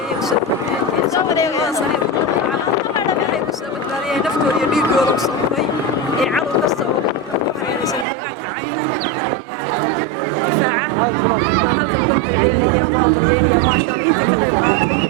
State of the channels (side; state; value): left; drops out; at 8.1 s